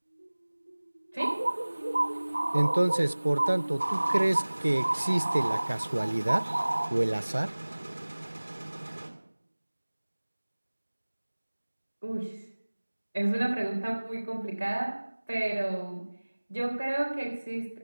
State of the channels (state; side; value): inverted; both; correlation -1.00